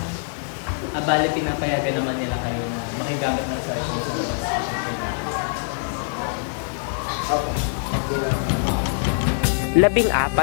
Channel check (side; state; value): right; silent; digital silence